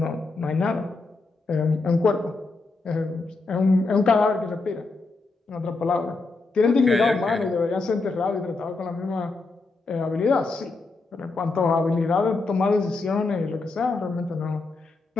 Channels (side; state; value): right; quieter; 3.7 dB